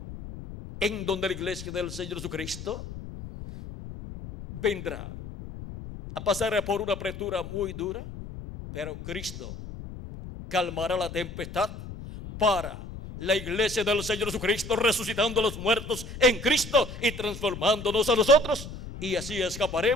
en donde la iglesia del Señor Jesucristo vendrá a pasar por una apretura muy dura, pero Cristo calmará la tempestad para la iglesia del Señor Jesucristo, resucitando a los muertos en Cristo y transformándonos a nosotros, y así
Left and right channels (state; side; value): noise; left; rumble, 11 dB below the sound